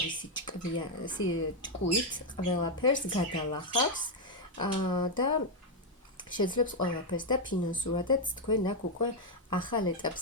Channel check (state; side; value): normal; both; correlation 0.02